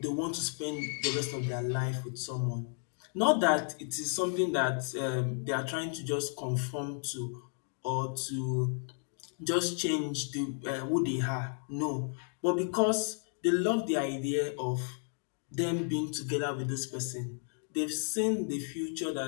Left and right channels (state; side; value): silent; right; 56 dB below the other